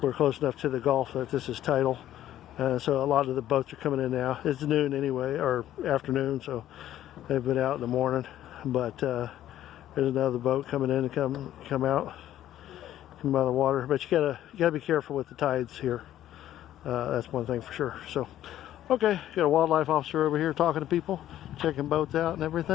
We're close enough to the Gulf that this is tidal. So a lot of the boats are coming in now. It's noon anyway, or afternoon, so they've been out in the morning. But there's another boat coming in and come out of the water. But you gotta be careful with the tides here. That's one thing for sure. So, okay, got a wildlife officer over here talking to people, checking boats out and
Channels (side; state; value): right; quieter; 12.5 dB